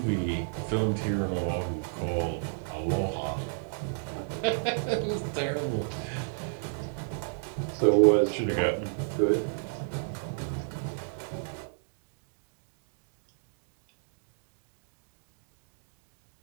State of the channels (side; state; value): left; silent; digital silence